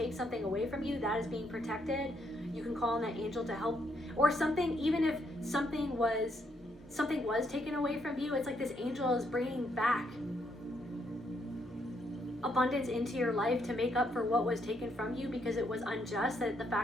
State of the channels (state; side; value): normal; both; correlation 0.75